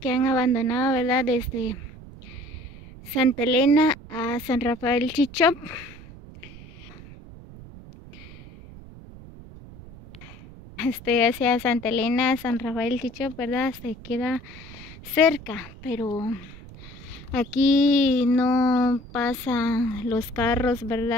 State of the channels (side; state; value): right; noise; rumble, 17 dB below the sound